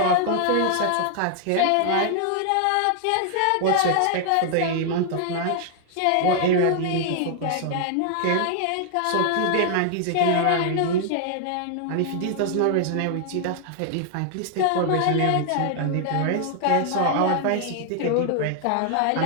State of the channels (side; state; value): both; different; correlation 0.00